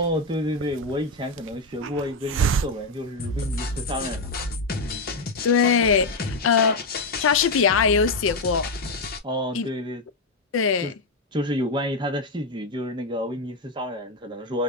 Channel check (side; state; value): right; quieter; 3.1 dB